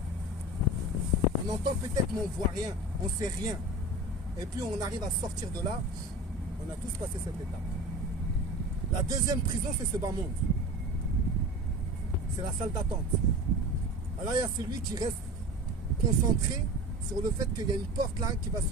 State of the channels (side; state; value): both; normal; correlation 0.33